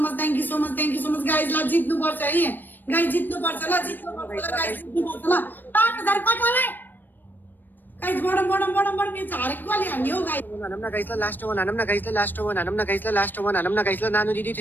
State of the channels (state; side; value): late; right; 0.091 ms